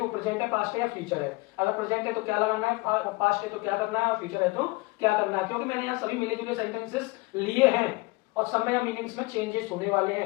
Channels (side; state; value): right; quieter; 23.8 dB